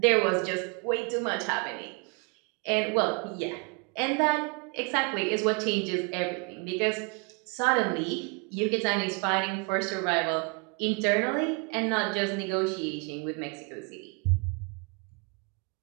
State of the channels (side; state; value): left; quieter; 34.0 dB